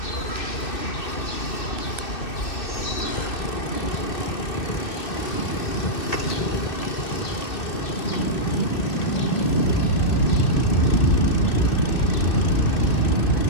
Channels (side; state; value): right; late; 2.6 ms